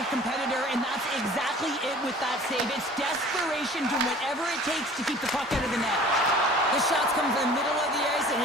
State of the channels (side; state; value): both; normal; correlation 0.47